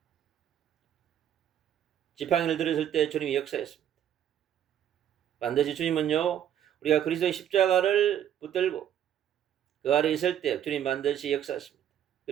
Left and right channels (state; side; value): quieter; left; 10.2 dB